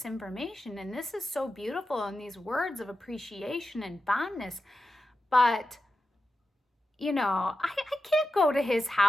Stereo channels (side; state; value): both; normal; correlation 0.90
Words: information, and this is so beautiful, and these words of appreciation and fondness. But, I can't go to his